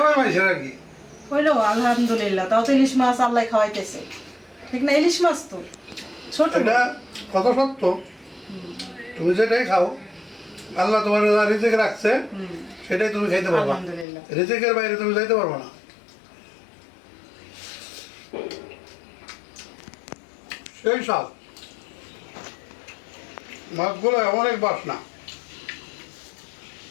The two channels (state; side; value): drops out; right; at 14.1 s